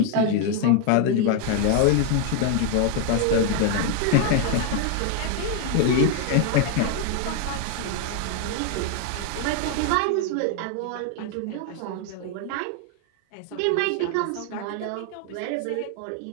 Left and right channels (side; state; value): both; different; correlation 0.00